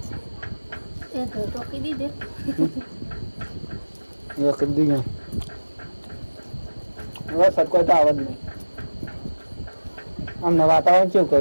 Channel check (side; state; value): both; inverted; correlation -1.00